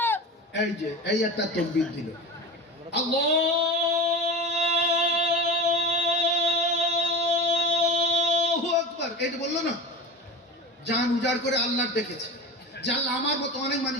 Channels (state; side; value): normal; both; correlation 0.29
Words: এই যে এই একটা তাকবীর দিল, আল্লাহু আকবার, এই যে বললো না, জান উজাড় করে আল্লাহ ডেকেছে। যে আল্লাহ আমার মতো অনেক